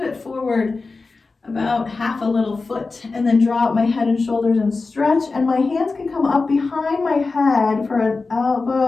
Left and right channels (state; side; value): quieter; right; 3.9 dB